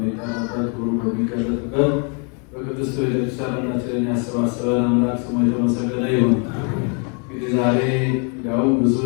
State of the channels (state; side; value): quieter; right; 37.6 dB